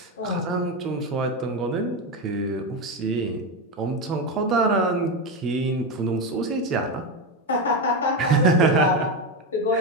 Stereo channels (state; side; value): normal; both; correlation 0.13